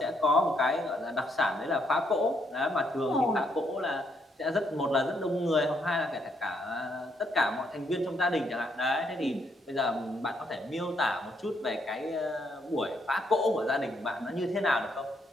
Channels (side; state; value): both; normal; correlation 0.74